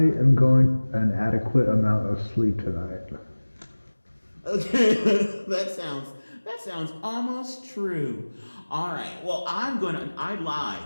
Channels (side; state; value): both; inverted; correlation -1.00